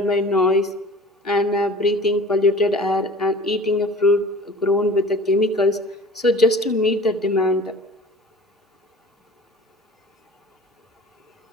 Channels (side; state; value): both; normal; correlation 0.42